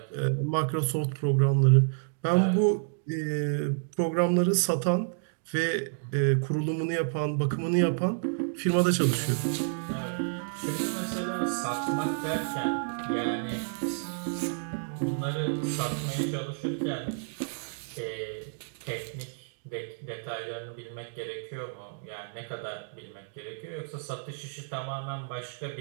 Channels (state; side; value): silent; left; digital silence